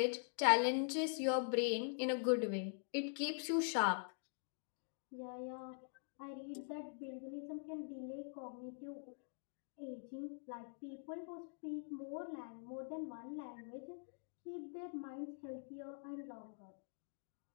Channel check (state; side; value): silent; right; digital silence